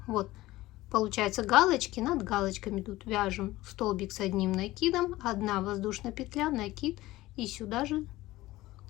вот. Получается, галочки над галочками тут вяжем столбик с одним накидом, одна воздушная петля, накид, и сюда же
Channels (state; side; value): quieter; right; 17.6 dB